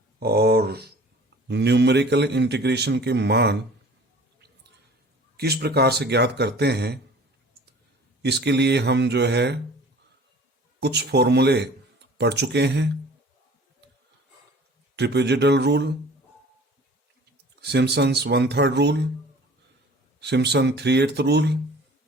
और न्यूमेरिकल इंटीग्रेशन के मान किस प्रकार से ज्ञात करते हैं, इसके लिए हम जो है कुछ फॉर्मूले पढ़ चुके हैं। Trapezoidal rule, Simpson's 1/3 rule, Simpson 3/8 rule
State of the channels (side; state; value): both; normal; correlation 0.47